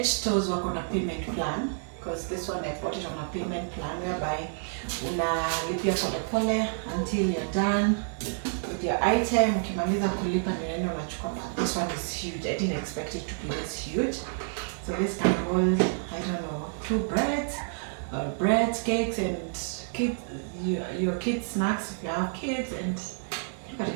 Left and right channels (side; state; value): left; silent; digital silence